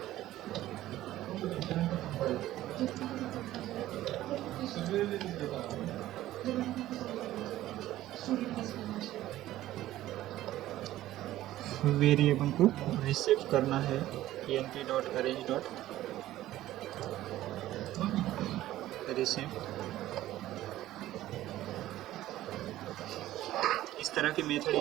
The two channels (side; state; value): left; quieter; 14.6 dB